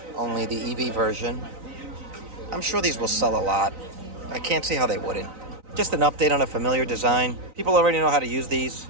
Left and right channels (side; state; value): left; late; 3.9 ms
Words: only the EV version. I'm sure these will sell a lot. I can't see how they wouldn't. Just an update on a familiar design. People already know how to use these.